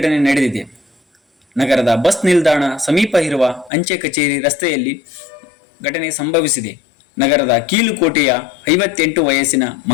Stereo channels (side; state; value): right; drops out; at 3.7 s